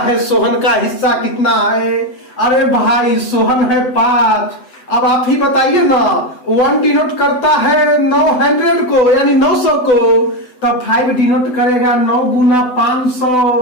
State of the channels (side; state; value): right; late; 8.0 ms